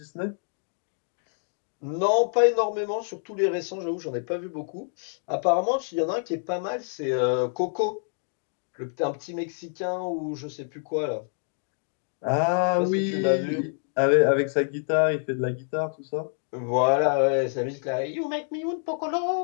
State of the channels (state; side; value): silent; right; digital silence